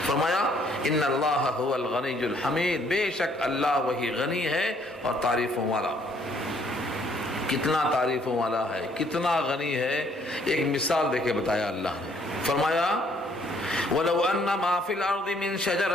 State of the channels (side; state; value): both; normal; correlation 0.65